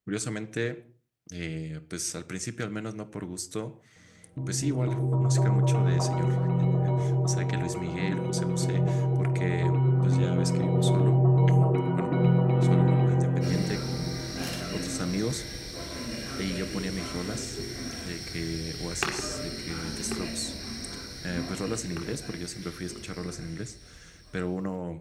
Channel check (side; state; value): both; identical; correlation 1.00